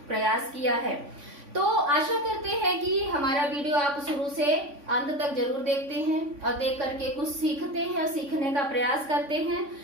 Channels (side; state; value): left; late; 3.5 ms